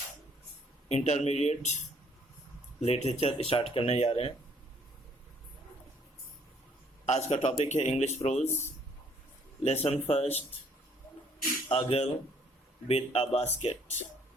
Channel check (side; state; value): both; normal; correlation 0.63